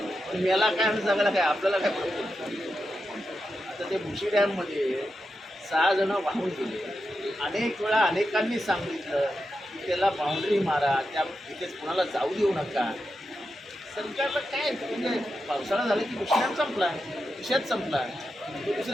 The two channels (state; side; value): normal; both; correlation 0.88